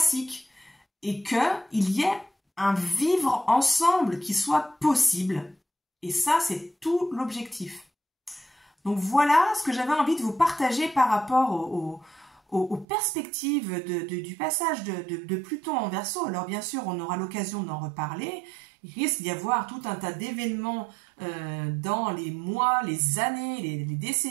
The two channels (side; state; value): left; drops out; at 12.9 s